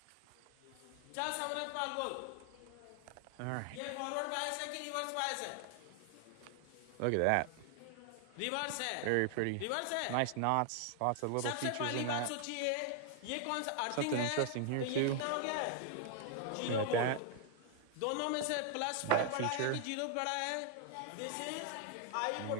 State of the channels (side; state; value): both; different; correlation 0.00